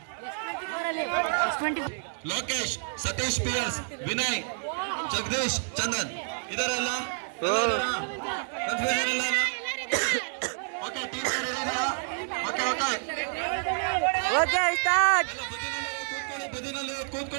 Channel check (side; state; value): left; silent; digital silence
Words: ಲೋಕೇಶ್, ಸತೀಶ್ PS, ವಿನಯ್, ಜಗದೀಶ್, ಚಂದನ್ ಇದಾರಲ್ಲ? ಕನ್ಫ್ಯೂಷನ್ ಇಲ್ಲ? ಓಕೆ, ಟೀಮ್ ರೆಡಿ ಇದೆಯಾ? ಓಕೆ